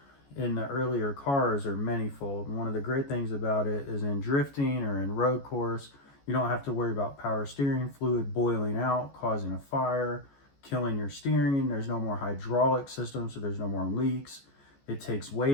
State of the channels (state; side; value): late; right; 14 ms